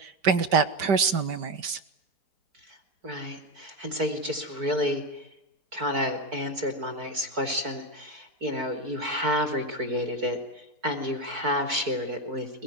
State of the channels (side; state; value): left; late; 5.1 ms